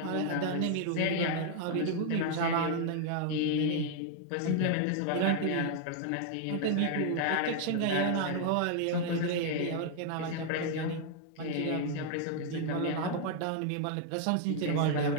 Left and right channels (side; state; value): both; different; correlation 0.00